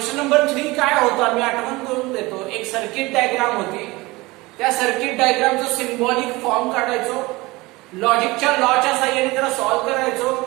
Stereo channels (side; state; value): left; quieter; 21.9 dB